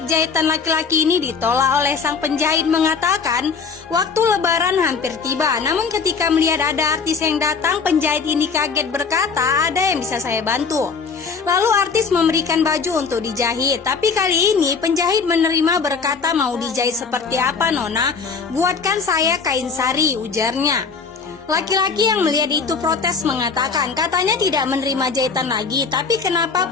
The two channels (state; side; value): quieter; right; 5.2 dB